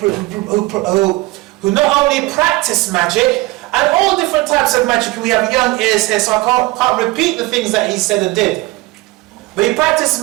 not only practiced magic, and all different types of magic. We have young ears here, so I can't repeat the things that he said and did. But he practiced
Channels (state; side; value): quieter; left; 20.9 dB